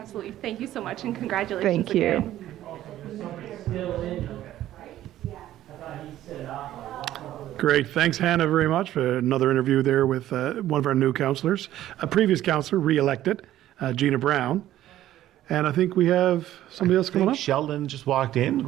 Thank you so much, and congratulations Thank you. again. Great. Thanks, Hannah, very much for another interview there with one of our new councillors, a previous councillor, re-elected, Gina Brown. And I think we have somebody else coming up. Sheldon just walked in. We're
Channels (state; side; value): quieter; left; 13.3 dB